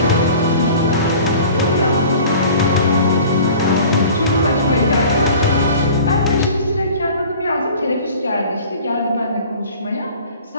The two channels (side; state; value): both; inverted; correlation -0.44